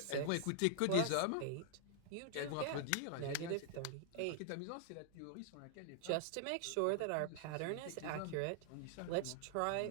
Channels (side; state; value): both; different; correlation -0.01